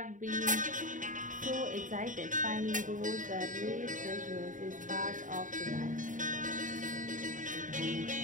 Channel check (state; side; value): late; left; 0.37 ms